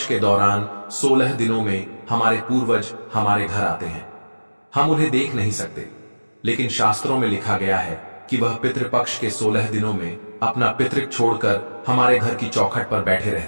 के दौरान 16 दिनों में हमारे पूर्वज हमारे घर आते हैं। हम उन्हें देख नहीं सकते, लेकिन शास्त्रों में लिखा गया है कि वह पितृपक्ष के 16 दिनों में अपना पितृक छोड़कर हमारे घर की चौखट पर बैठे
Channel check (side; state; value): both; inverted; correlation -1.00